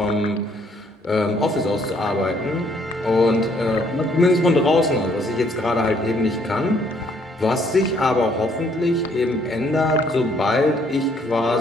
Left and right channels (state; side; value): normal; both; correlation 0.66